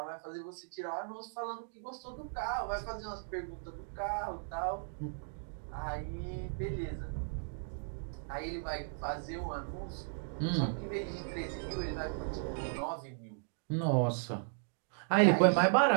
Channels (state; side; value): silent; left; digital silence